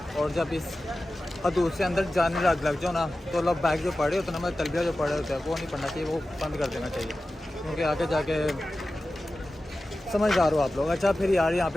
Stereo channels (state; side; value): normal; both; correlation 0.94